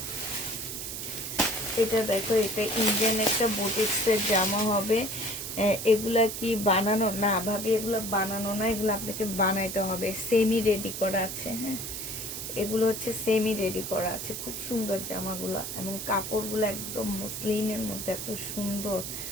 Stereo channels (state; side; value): noise; right; hiss, 6 dB below the sound